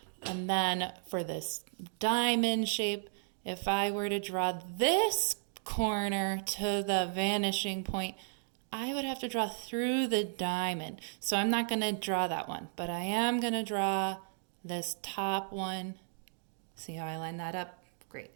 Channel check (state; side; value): silent; left; digital silence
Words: And then for this diamond shape, if I were to draw this corner to the vanishing point, I would have to draw through the diamond. So I'm not going to draw that one, but I am going to draw this top one. See how I line that up? Great.